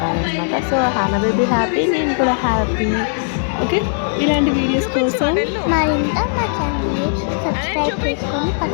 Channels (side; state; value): right; silent; digital silence